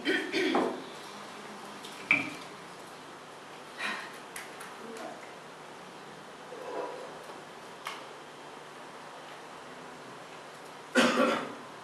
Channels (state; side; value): identical; both; correlation 1.00